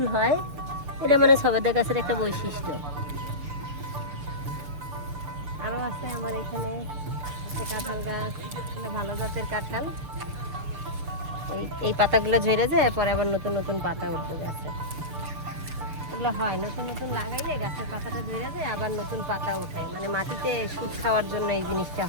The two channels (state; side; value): late; left; 6.9 ms